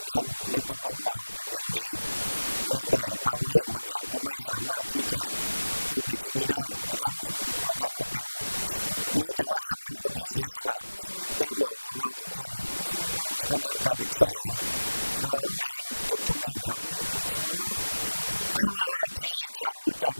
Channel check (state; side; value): inverted; both; correlation -1.00